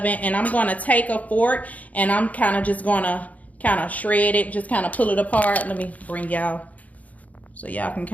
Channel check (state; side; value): late; right; 0.073 ms